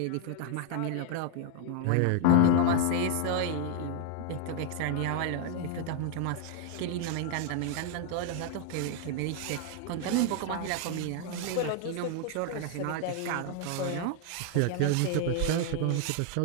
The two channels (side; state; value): both; different; correlation 0.00